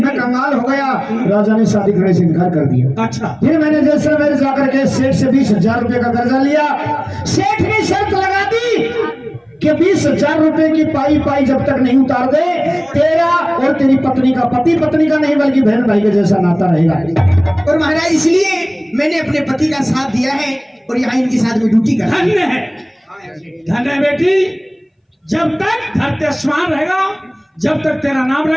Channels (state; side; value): identical; both; correlation 1.00